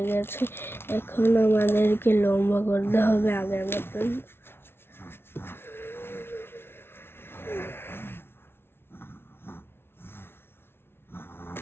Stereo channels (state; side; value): late; right; 0.12 ms